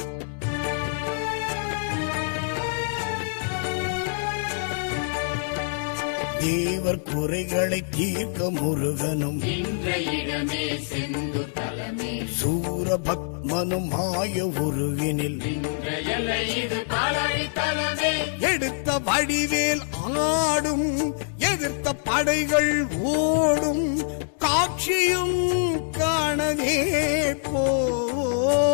தேவர் குறைகளை தீர்க்க முருகனும் இடமே செந்து தலமே. சூரபத்மனும் மாய உருவினில் இது பாலாழி தலமே. எடுத்த வடிவேல் ஆடும், எதிர்த்த படைகள் ஓடும், காட்சியும் காணவே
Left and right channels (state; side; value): silent; right; digital silence